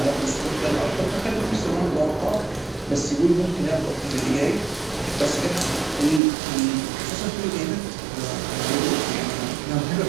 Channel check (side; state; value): left; drops out; at 6.2 s